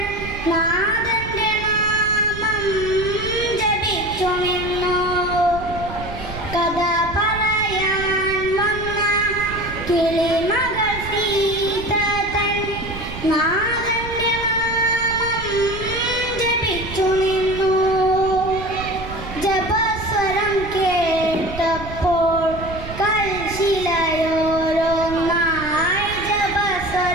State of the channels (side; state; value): right; noise; rumble, 11 dB below the sound